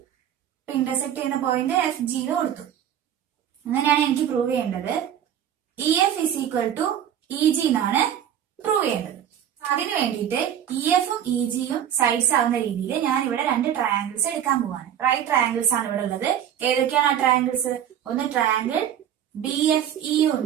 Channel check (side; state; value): left; quieter; 9.9 dB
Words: ഇന്റർസെക്ട് ചെയ്യുന്ന പോയിന്റ് എഫ് ജി എന്ന് കൊടുത്തു. അങ്ങനെയാണ് എനിക്ക് പ്രൂവ് ചെയ്യേണ്ടത്. E F is equal to E G എന്നാണ് പ്രൂവ് ചെയ്യേണ്ടത്. അതിനു വേണ്ടിയിട്ട് ഇ എഫും ഇ ജിയും സൈഡ്സ് ആവുന്ന രീതിയിൽ ഞാൻ ഇവിടെ 2 ട്രയാങ്കിൾസ് എടുക്കാൻ പോവാണ്. റൈറ്റ് ട്രയാങ്കിൾസ് ആണ് ഇവിടെ ഉള്ളത്. ഏതൊക്കെയാണ് ആ ട്രയാങ്കിൾസ്? ഒന്ന് ട്രയാങ്കിൾ ബി എഫ് ഇ